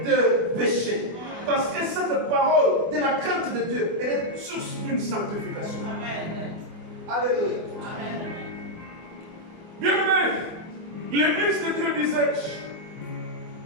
de péché. Parce que cette parole de la crainte de Dieu, elle est source d'une sanctification. Amen. Alléluia. Bien aimé, l'église de Dieu disait,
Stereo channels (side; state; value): left; late; 24 ms